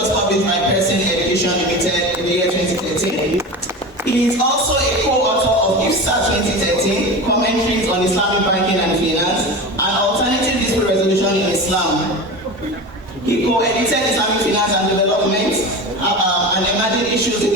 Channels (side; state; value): both; normal; correlation 0.28